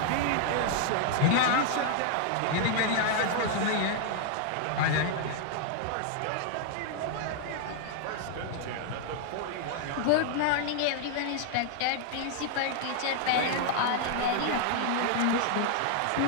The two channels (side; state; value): both; different; correlation 0.00